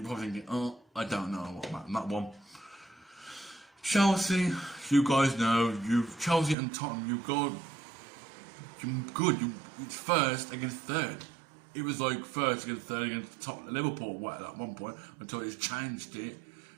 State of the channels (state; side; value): drops out; left; at 6.6 s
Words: probably thinking, oh, I don't know what about that one. Chelsea, you guys know, Chelsea and Tottenham, you're good. It's first against third. It was like first against third against Tottenham, Liverpool at one point until it's changed it.